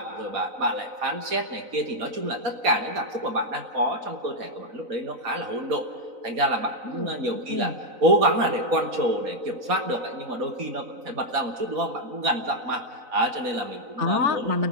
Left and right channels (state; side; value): late; left; 4.0 ms